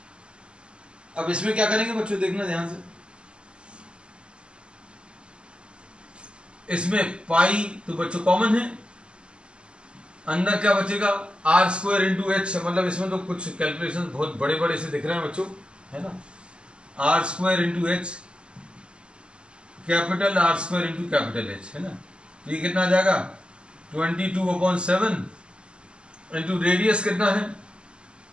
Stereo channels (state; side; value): late; left; 0.051 ms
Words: अब इसमें क्या करेंगे बच्चों, देखना ध्यान से। इसमें पाई तो बच्चों कॉमन है, अंदर क्या बचेगा? आर स्क्वायर इंटू एच, मतलब इसमें तो कुछ कैलकुलेशन बहुत बड़े बड़े से दिख रहे हैं बच्चों, है ना। R square into h capital R square into capital H, है ना। तो ये कितना आ जाएगा? 22/7 इंटू रेडियस कितना है?